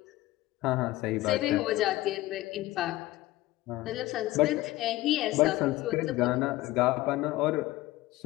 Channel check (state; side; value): quieter; right; 17.6 dB